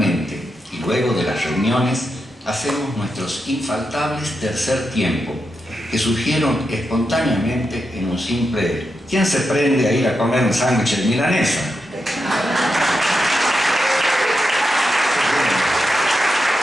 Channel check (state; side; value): normal; both; correlation 0.86